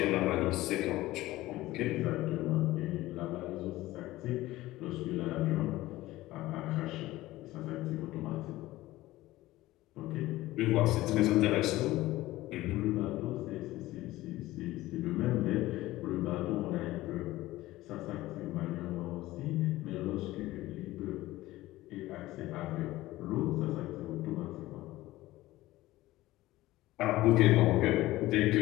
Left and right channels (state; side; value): quieter; right; 17.2 dB